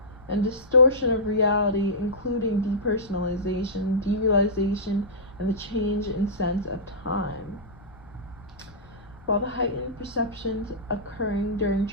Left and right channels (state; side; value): noise; left; rumble, 23 dB below the sound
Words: and distortion of reality, including depersonalization, derealization, and the change in sense of time. While the heightened perceptions occurring during